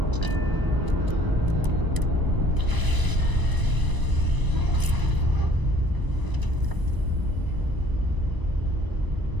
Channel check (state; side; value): late; left; 1.0 ms